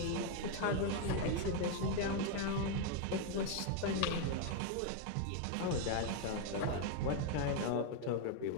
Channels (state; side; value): different; both; correlation 0.01